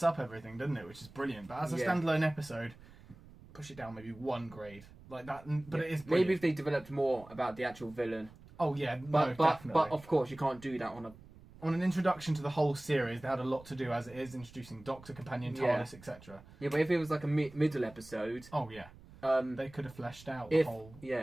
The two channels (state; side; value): noise; right; rumble, 21 dB below the sound